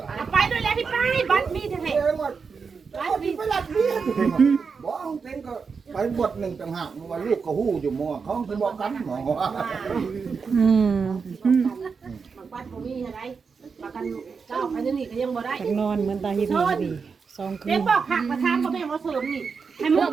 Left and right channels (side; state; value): left; quieter; 5.4 dB